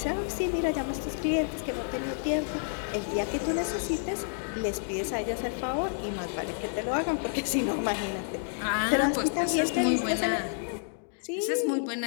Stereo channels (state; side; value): silent; right; digital silence